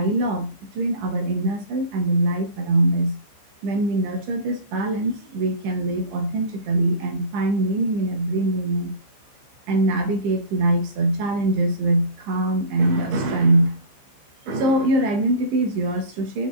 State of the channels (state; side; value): late; left; 15 ms